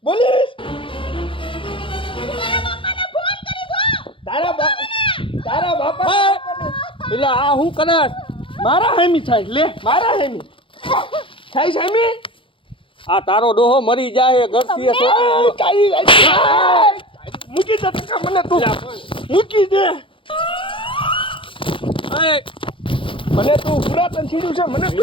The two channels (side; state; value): right; late; 0.25 ms